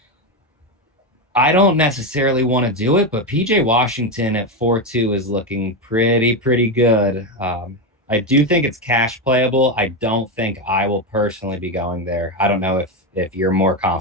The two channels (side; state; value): both; normal; correlation 0.11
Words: I don't necessarily want to do it, but PJ Washington at 4-2 is looking pretty good. I do think it's cash playable. I don't think I will personally be going there. I don't know if you're more